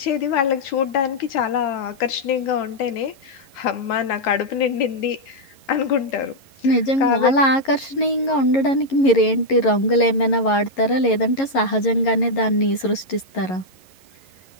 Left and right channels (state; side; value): late; right; 11 ms